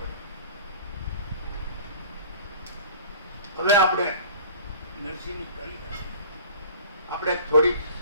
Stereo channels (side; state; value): both; inverted; correlation -0.45